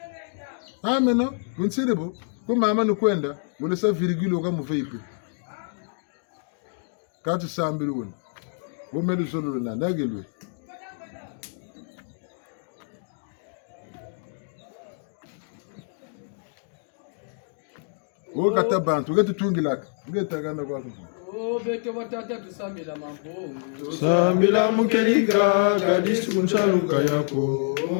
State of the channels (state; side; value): silent; right; 61 dB below the other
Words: ameno kunsiribu kumama ni kwenda mule sa virgule oka muveipe kati sambili wuna wumelu zolulu na nagelwe kata bantu getu tungilaka ngetagana kwa kufu beke watata tusambila mambo sambila mukeliga gadisi kunchaluka yako